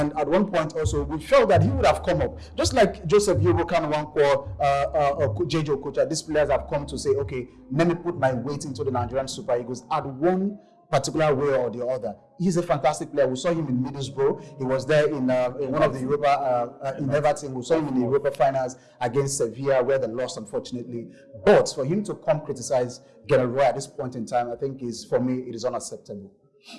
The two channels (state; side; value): identical; both; correlation 1.00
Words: at one point also, we felt that he would have come up. Just like Joseph Yobokan Wankwo, JJ Okocha, these players have come to say, okay, let me put my weight into the Nigerian Super Eagles at one particular way or the other. He's a fantastic player. We saw him in Middlesbrough. He was there in one of the Europa, in Everton. We saw him in the Europa finals against Sevilla, where they lost, unfortunately. But for him to come criticize Gennaro Roy at this point in time, I think for me, it is unacceptable.